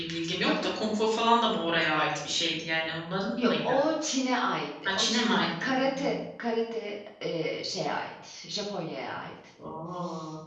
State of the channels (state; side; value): identical; both; correlation 1.00